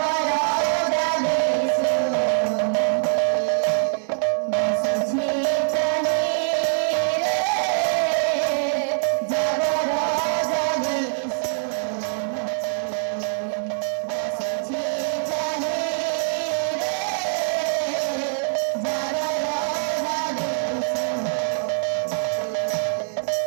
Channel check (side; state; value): left; silent; 63 dB below the other